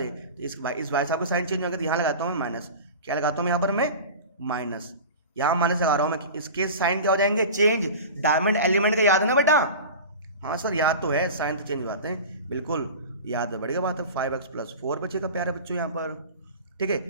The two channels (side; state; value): both; inverted; correlation -0.34